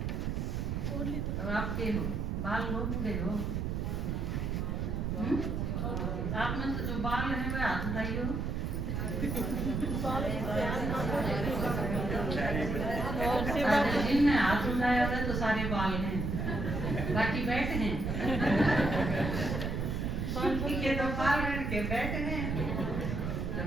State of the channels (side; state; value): right; noise; rumble, 1 dB below the sound